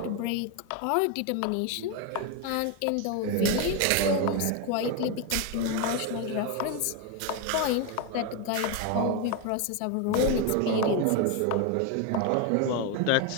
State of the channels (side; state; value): both; different; correlation 0.02